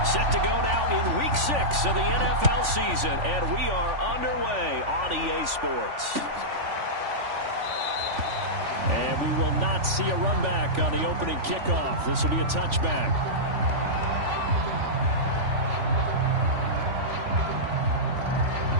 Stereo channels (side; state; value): left; late; 3.4 ms